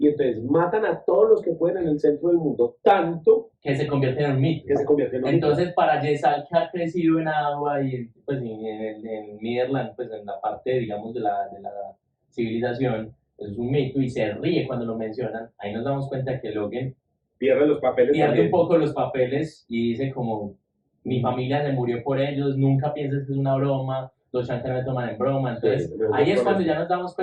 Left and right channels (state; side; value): identical; both; correlation 1.00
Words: entonces matan a todos los que pueden en el centro del mundo, tanto que se convierte en un mito. que se convierte en un Entonces, para Yesal, que ha crecido en agua y pues, en Midland, pues en la parte, digamos, de la civilización, eso es un mito y se ríe cuando lo mencionan. Ahí nos damos cuenta que Logan pierde los papeles pierde también. un poco los papeles y dice como, mi familia se murió por ellos, nunca pienses que es una broma, los Shankas me toman en broma. Entonces, Sí, mejor ahí es por cuando eso. ya nos damos